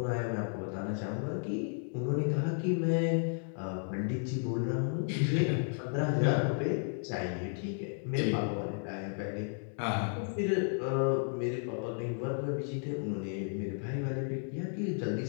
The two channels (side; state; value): right; silent; 55 dB below the other